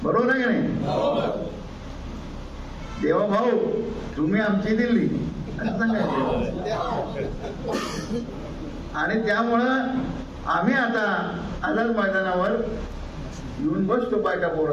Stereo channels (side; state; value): both; identical; correlation 1.00